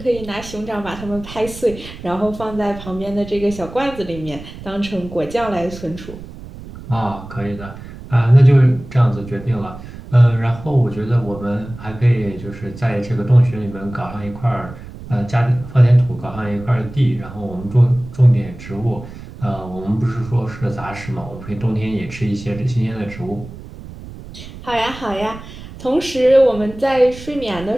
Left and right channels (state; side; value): noise; right; rumble, 14 dB below the sound